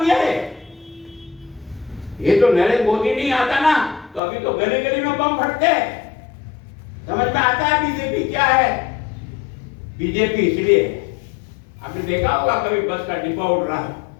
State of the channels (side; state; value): right; drops out; at 4.2 s